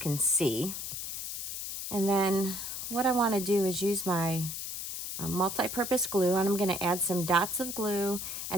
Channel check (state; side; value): noise; left; hiss, 6 dB below the sound